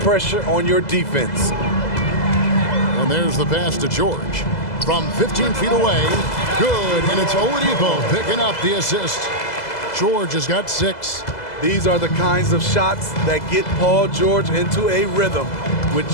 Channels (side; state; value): right; late; 2.0 ms